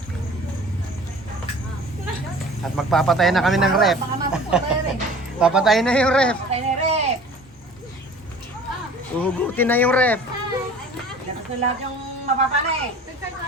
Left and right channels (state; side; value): normal; both; correlation 0.45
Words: At magpapatay na kami ng ref. Papatay na yung ref. Kaya na rep. Uhugutin na yung ref. Dapat na lahat yung mapapanay.